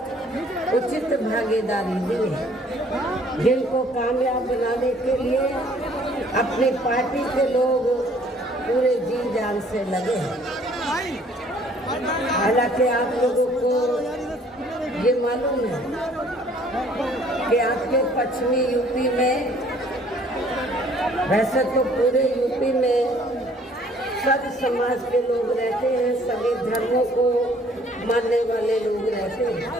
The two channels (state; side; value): normal; both; correlation 0.58